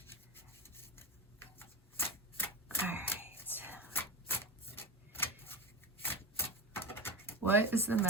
All right. What is the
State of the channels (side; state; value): both; normal; correlation 0.24